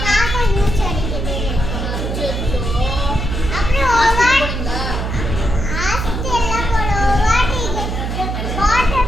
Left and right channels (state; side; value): noise; right; hum, 3 dB below the sound